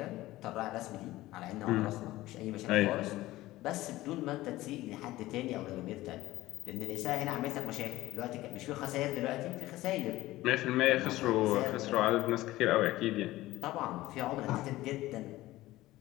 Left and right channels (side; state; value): right; quieter; 17.1 dB